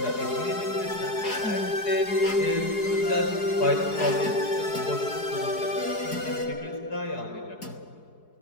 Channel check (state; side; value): late; right; 4.7 ms